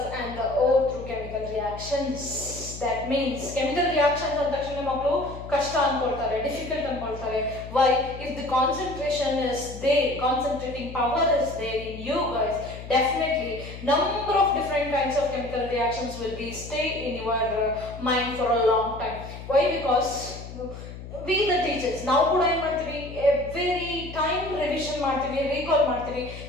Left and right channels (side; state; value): left; noise; hum, 12 dB below the sound